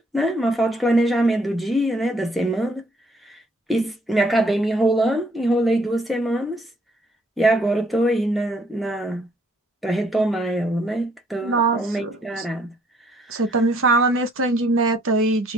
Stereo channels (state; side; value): normal; both; correlation 0.66